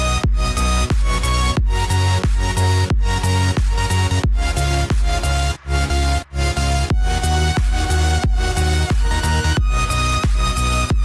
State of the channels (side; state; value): both; identical; correlation 1.00